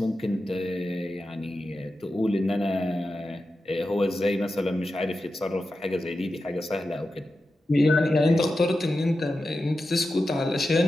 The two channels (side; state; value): both; normal; correlation 0.91